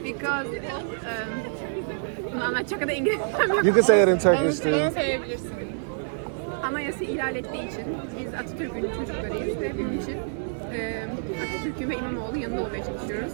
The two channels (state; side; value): silent; left; 56 dB below the other